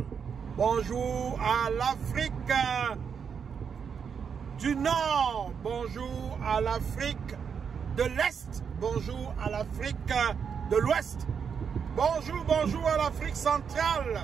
Bonjour à l'Afrique du Nord. Bonjour à l'Afrique de l'Est. Bonjour à l'Afrique de l'Ouest. Bonjour, bonjour à l'Afrique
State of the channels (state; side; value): quieter; left; 6.7 dB